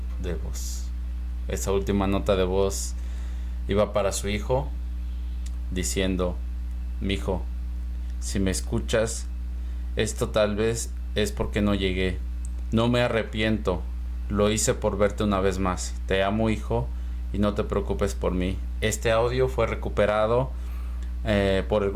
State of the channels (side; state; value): both; identical; correlation 1.00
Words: de voz. Esa última nota de voz iba para su hijo, diciendo: mijo, si me escuchas, esto tal vez es porque no llegué, No me arrepiento. Lo hice por verte una vez más. Te amo, hijo, y no te preocupes por mí. Este audio fue recuperado por el